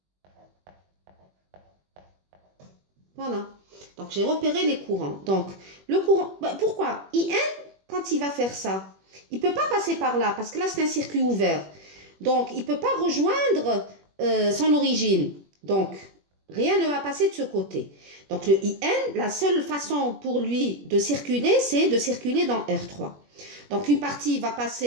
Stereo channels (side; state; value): left; late; 21 ms